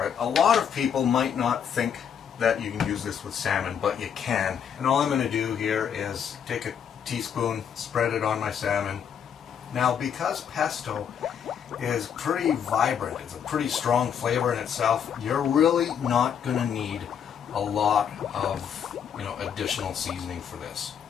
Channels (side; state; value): right; quieter; 8.1 dB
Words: it. A lot of people might not think that you can use this with salmon, but you can. And all I'm going to do here is take a teaspoon, spread it on my salmon. Now, because pesto is pretty vibrant, it's a pretty strong flavor in itself, you're really not going to need a lot of additional seasoning for this.